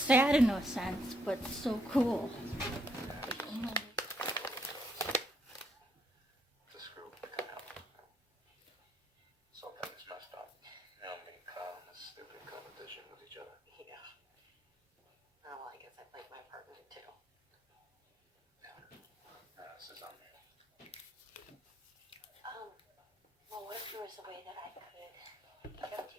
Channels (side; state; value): both; normal; correlation 0.73